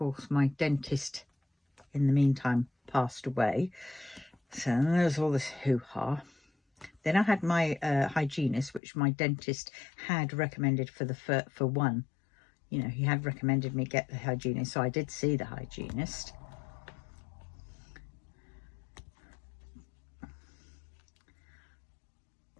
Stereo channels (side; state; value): right; drops out; at 8.8 s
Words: my dentist, in the meantime, passed away. So there's all this hoo-ha. Then I had my hygienist, which my dentist had recommended for one. You know, he had recommended me get the hygienist. So I did see the hygienist.